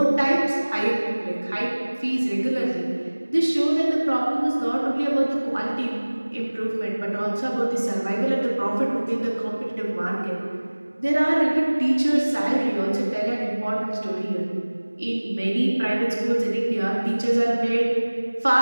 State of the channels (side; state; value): both; inverted; correlation -1.00